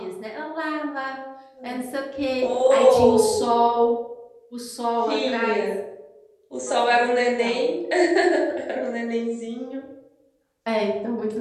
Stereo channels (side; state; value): both; identical; correlation 1.00